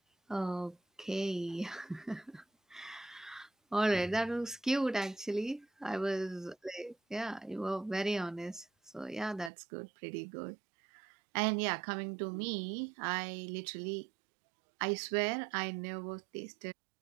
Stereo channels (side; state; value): left; drops out; at 9.5 s